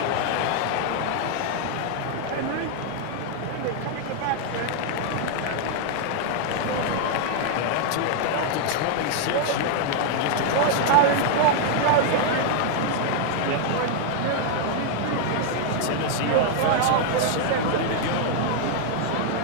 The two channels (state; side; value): different; both; correlation 0.00